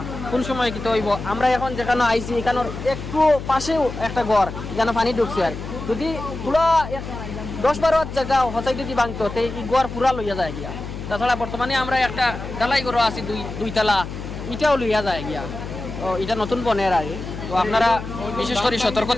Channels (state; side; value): noise; left; hum, 9 dB below the sound